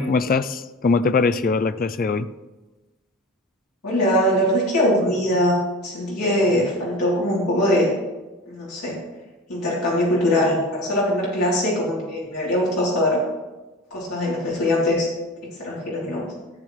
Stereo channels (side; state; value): both; normal; correlation 0.33